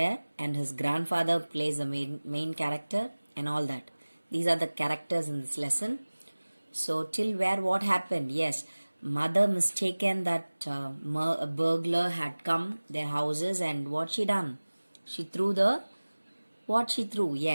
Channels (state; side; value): inverted; both; correlation -1.00